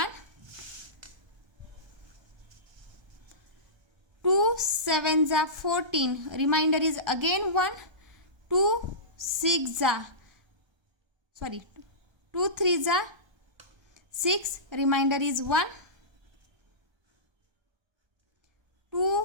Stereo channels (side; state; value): left; late; 1.3 ms